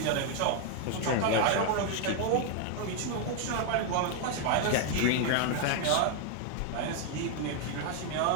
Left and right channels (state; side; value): different; both; correlation 0.00